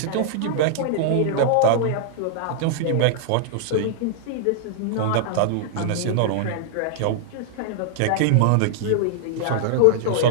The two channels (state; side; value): different; both; correlation -0.01